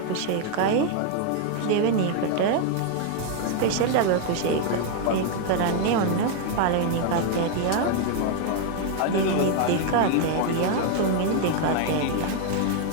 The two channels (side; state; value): both; different; correlation 0.00